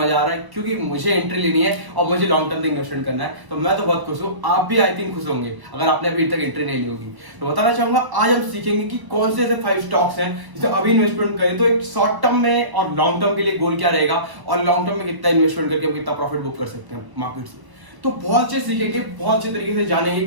आ रहा है क्योंकि मुझे एंट्री लेनी है और मुझे लॉन्ग टर्म तक इन्वेस्टमेंट करना है। तो मैं तो बहुत खुश हूँ, आप भी आई थिंक खुश होंगे अगर आपने अभी तक एंट्री नहीं ली होगी। तो बताना चाहूंगा आज हम सीखेंगे कि कौन से ऐसे 5 स्टॉक्स हैं जिसे अभी इन्वेस्टमेंट करें तो एक शॉर्ट टर्म में और लॉन्ग टर्म के लिए गोल क्या रहेगा और लॉन्ग टर्म में कितना इन्वेस्टमेंट करके हम कितना प्रॉफिट बुक कर सकते हैं मार्केट से। तो बहुत अच्छे सीखेंगे, बहुत अच्छे तरीके से जानेंगे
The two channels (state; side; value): late; left; 1.0 ms